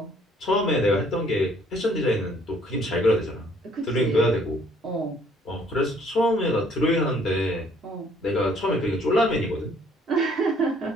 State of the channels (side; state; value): both; normal; correlation 0.61